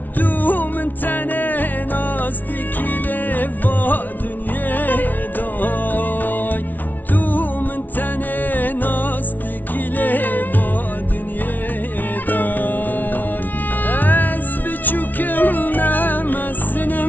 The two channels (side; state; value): right; late; 0.083 ms